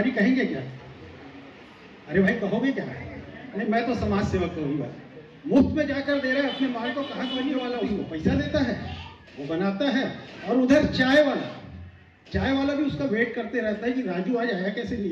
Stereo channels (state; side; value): identical; both; correlation 1.00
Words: कहेंगे क्या? अरे भाई कहोगे क्या? नहीं, मैं तो समाज सेवक कहूँगा। मुफ्त में जाकर दे रहा है अपने माल को, कहाँ करने वाला उसको पैसा देता है, वो बनाता है, और उधर चाय वाला भी उसका वेट करते रहता है कि राजू आज आया कैसे नहीं